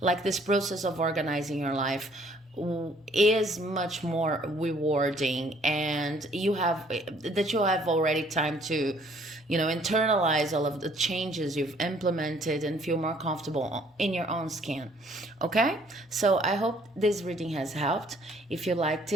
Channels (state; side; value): normal; both; correlation 0.61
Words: like this process of organizing your life is much more rewarding, and you have already time to internalize all of the changes you've implemented and feel more comfortable in your own skin. Okay, so I hope this reading has helped. If you liked